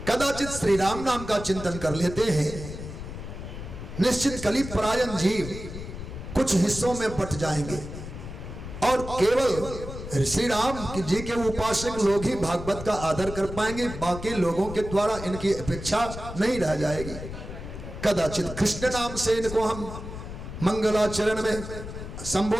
कदाचित श्री राम नाम का चिंतन कर लेते हैं, निश्चित कली परायण जीव कुछ हिस्सों में बट जाएंगे और केवल श्री राम जी के उपासक लोग ही भागवत का आदर कर पाएंगे, बाकी लोगों के द्वारा इनकी अपेक्षा नहीं रह जाएगी। कदाचित कृष्ण नाम से इनको हम मंगलाचरण में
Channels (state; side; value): noise; left; rumble, 10 dB below the sound